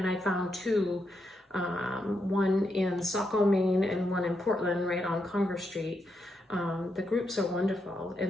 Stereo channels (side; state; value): both; normal; correlation 0.82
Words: I found two, one in Saco, Maine and one in Portland right on Congress Street. The groups are wonderful